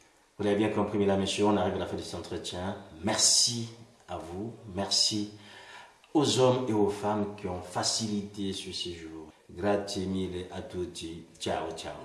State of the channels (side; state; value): both; identical; correlation 1.00